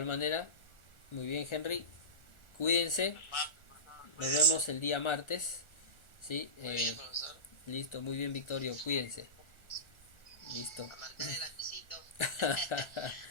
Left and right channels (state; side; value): late; right; 1.4 ms